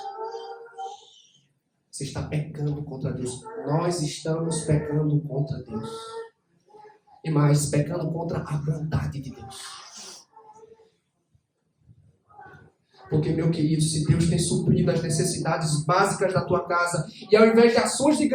Você está pecando contra Deus. Nós estamos pecando contra Deus. E mais, pecando contra a bondade de Deus. Porque, meu querido, se Deus tem suprido as necessidades básicas da tua casa, e ao invés de ações de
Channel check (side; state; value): both; identical; correlation 1.00